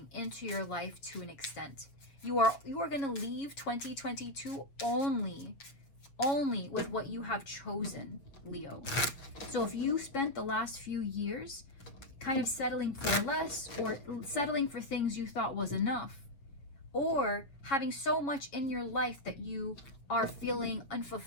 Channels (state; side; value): late; right; 7.2 ms